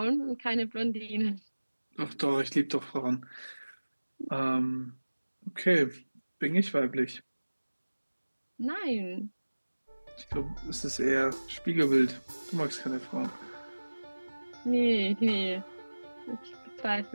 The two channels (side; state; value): both; inverted; correlation -1.00